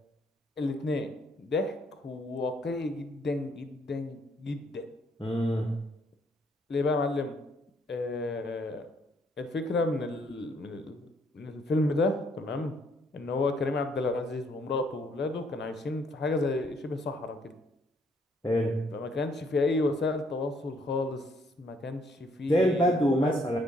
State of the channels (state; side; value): normal; both; correlation 0.68